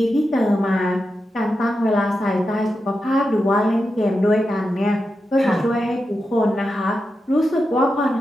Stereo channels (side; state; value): both; normal; correlation 0.89